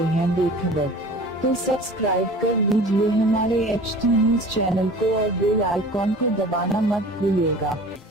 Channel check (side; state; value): both; normal; correlation 0.42